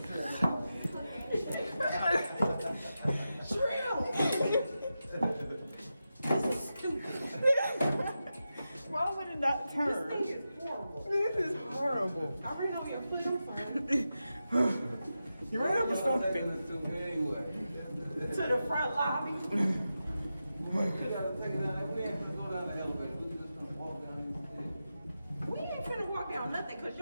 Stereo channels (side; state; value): both; inverted; correlation -0.90